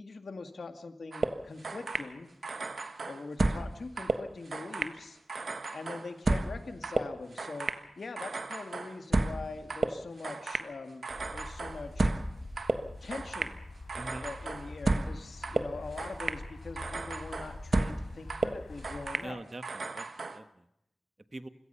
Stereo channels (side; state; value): both; normal; correlation 0.95